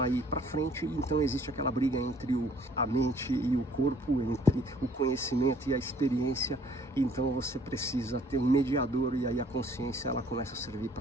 ir para frente, então existe aquela briga entre a mente e o corpo, entre o conhecimento e a experiência, então você precisa ter um mediador e aí a consciência ela começa a servir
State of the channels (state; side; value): normal; both; correlation 0.58